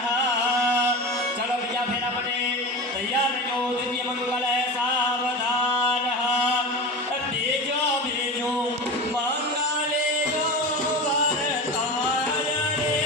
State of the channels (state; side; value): normal; both; correlation 0.27